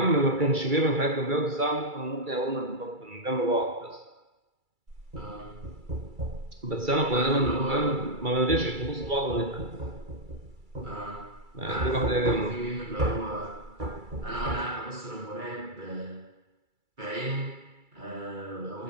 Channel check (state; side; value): late; left; 2.3 ms